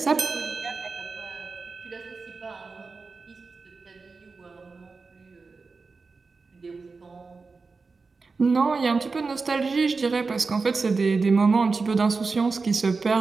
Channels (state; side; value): quieter; left; 4.3 dB